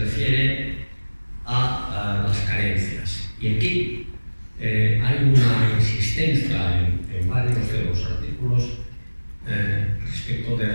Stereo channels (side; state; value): both; inverted; correlation -1.00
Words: refiere a las carencias, y aquí hay una insistencia en varios de los artículos respecto de